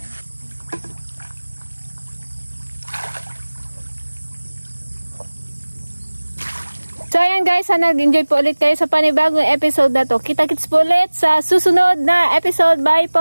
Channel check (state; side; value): inverted; both; correlation -1.00